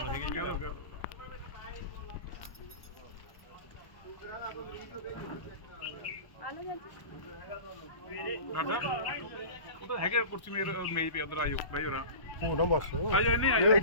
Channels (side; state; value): right; late; 1.1 ms